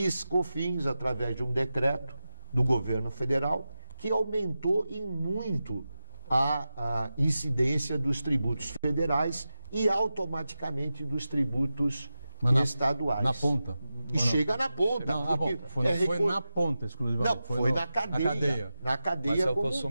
através de um decreto do governo federal, que aumentou em muito a incidência dos tributos federais e automaticamente dos tributos estaduais. Na ponta. E chega na ponta. Foi na ponta, exclusivamente. Não, foi na cadeia. Na cadeia. Mas é o como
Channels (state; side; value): inverted; both; correlation -0.93